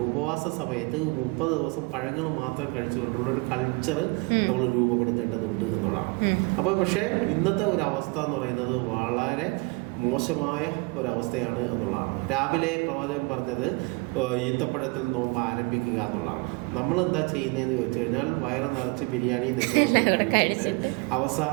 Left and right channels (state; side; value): quieter; left; 27.7 dB